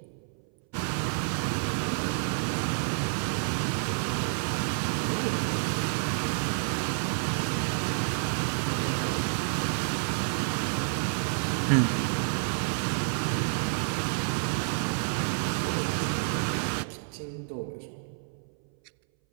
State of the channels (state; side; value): silent; left; 58 dB below the other